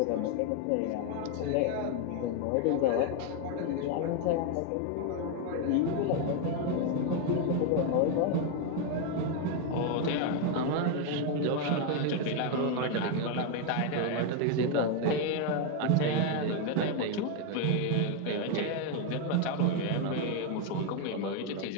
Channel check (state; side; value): different; both; correlation 0.01